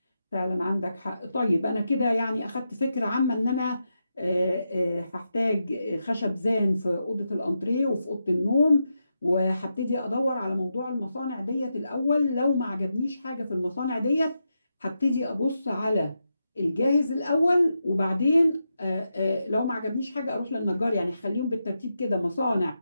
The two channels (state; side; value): inverted; both; correlation -0.86